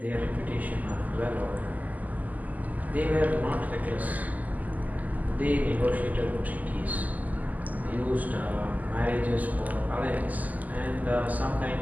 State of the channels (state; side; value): late; left; 0.079 ms